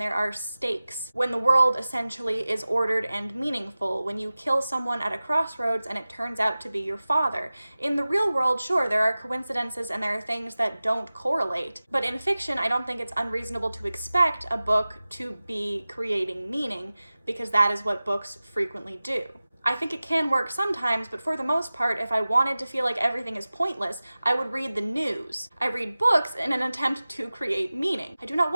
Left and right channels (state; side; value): inverted; both; correlation -0.97